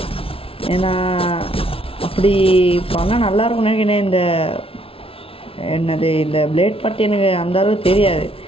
ஏன்னா அப்படி பண்ணால் நல்லாயிருக்கும்னு நினைக்கிறேன். இந்த பிளேட் பற்றி எனக்கு அந்த அளவுக்கு தெரியாது.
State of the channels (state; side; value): late; right; 0.26 ms